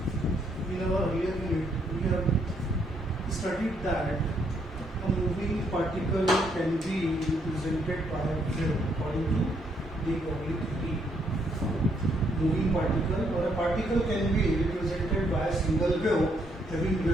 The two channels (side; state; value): both; normal; correlation 0.72